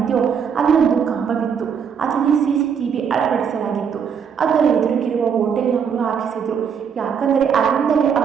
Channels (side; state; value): left; quieter; 7.1 dB